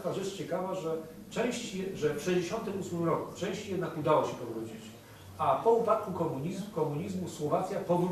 rzecz ciekawa, że w 1968 roku części jednak udało się powrócić. A po upadku komunizmu Słowacja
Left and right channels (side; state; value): both; identical; correlation 1.00